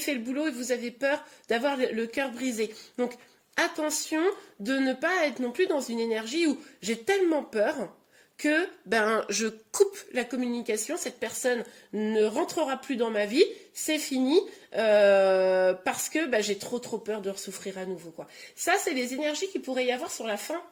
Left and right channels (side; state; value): both; identical; correlation 1.00